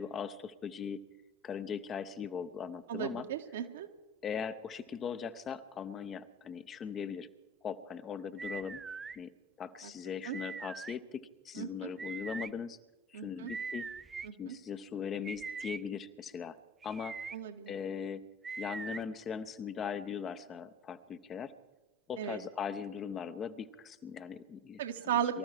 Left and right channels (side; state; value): both; normal; correlation 0.39